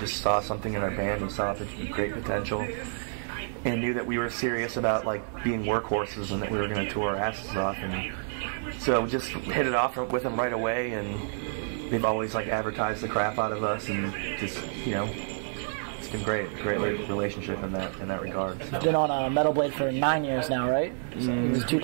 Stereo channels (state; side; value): silent; left; 59 dB below the other